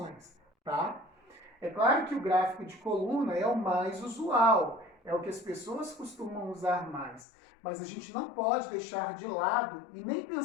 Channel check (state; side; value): drops out; right; at 7.2 s